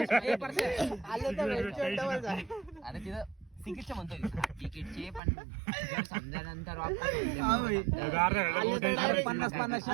अरे तिथं तिकीटचे म्हणतोय तिकीटचे पण समजानंतर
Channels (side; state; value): left; drops out; at 5.2 s